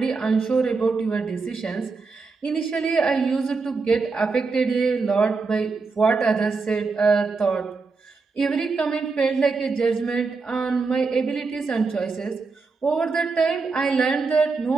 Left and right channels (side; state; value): left; quieter; 4.4 dB